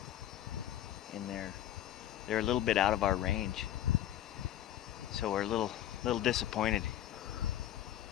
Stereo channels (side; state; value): right; quieter; 12.1 dB